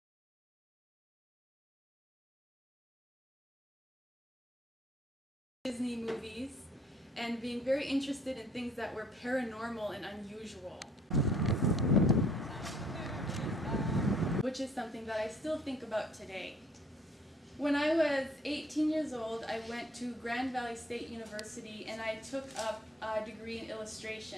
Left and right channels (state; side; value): normal; both; correlation 0.60